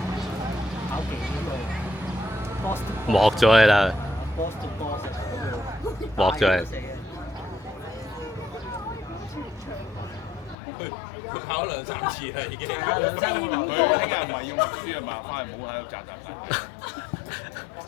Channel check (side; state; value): right; drops out; at 10.6 s